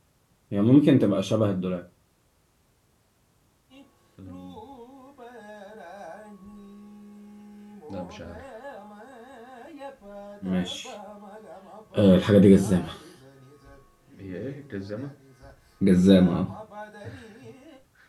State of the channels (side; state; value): both; identical; correlation 1.00